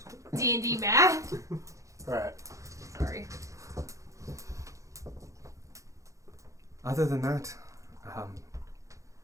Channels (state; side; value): late; left; 0.15 ms